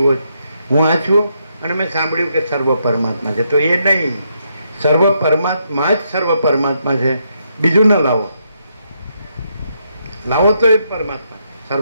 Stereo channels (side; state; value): both; inverted; correlation -0.78